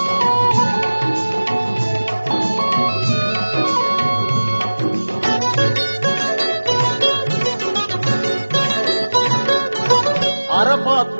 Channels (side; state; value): both; inverted; correlation -1.00